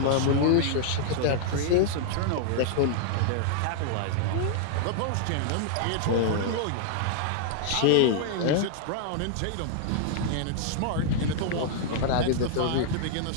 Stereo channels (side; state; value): both; different; correlation -0.01